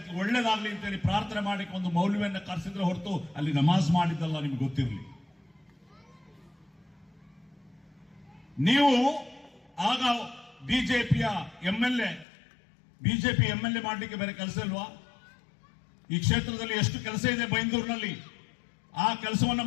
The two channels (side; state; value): right; drops out; at 12.2 s